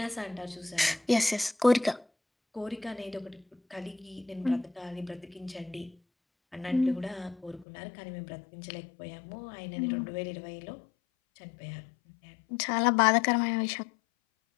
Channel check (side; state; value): right; drops out; at 7.7 s